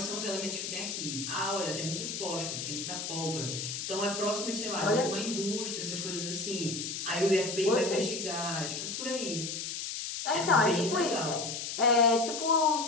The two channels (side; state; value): left; noise; hiss, 5 dB below the sound